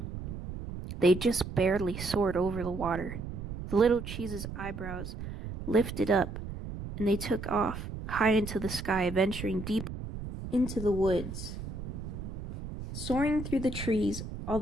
they just barely soared over the water. The little cheese's eyebrows lifted up, and they took off high into the sky, venturing deep into the woods. Soaring through the trees,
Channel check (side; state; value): right; noise; rumble, 8 dB below the sound